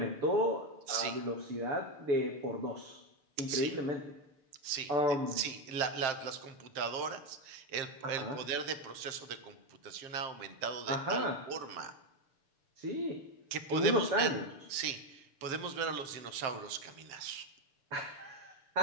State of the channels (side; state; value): left; late; 6.9 ms